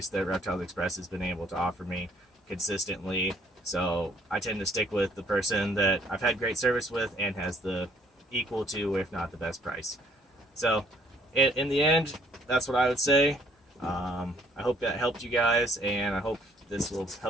that Reptiles Express has been able to offer me consistently. So I tend to stick with the person that I've had great service with and has the equal to, if not the best price. So in the end, that's what I would say. I hope that helped you guys, and I hope this will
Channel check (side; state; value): both; normal; correlation 0.63